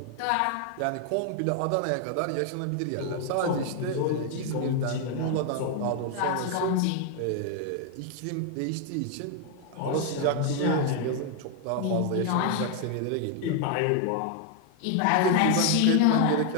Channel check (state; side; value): different; both; correlation 0.00